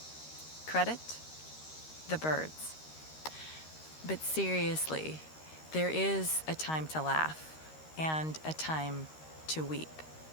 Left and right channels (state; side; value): late; right; 13 ms